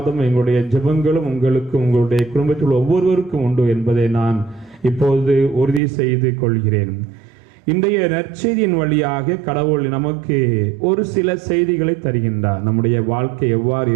எங்களுடைய ஜெபங்களும் உங்களுக்கு, உங்களுடைய குடும்பத்தில் ஒவ்வொருவருக்கும் உண்டு என்பதை நான் இப்போது உறுதி செய்து கொள்கிறேன். இன்றைய நற்செய்தியின் வழியாக கடவுள் நமக்கு ஒரு சில செய்திகளை தருகின்றார். நம்முடைய வாழ்க்கை எவ்வாறு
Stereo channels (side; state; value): left; drops out; at 5.8 s